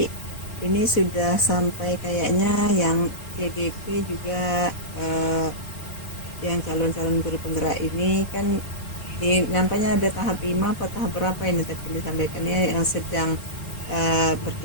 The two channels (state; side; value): late; right; 4.1 ms